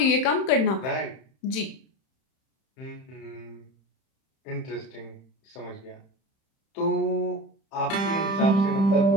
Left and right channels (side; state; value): right; late; 31 ms